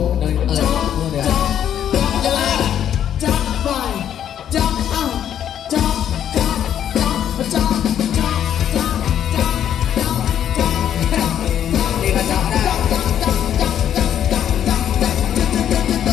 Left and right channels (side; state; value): right; quieter; 9.9 dB